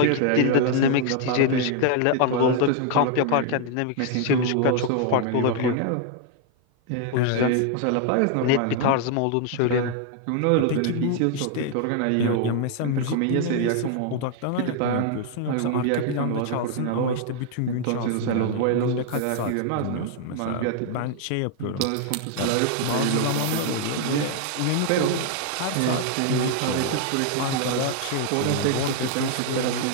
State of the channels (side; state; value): both; different; correlation 0.00